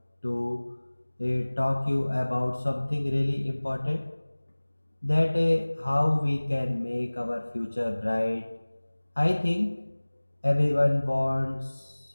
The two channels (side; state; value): both; inverted; correlation -1.00